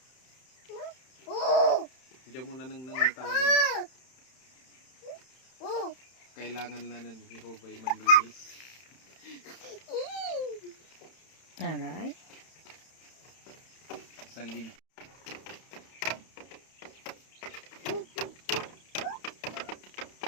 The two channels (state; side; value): late; right; 31 ms